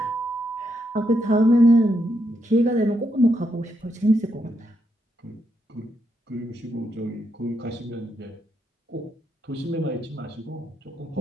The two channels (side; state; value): both; normal; correlation 0.80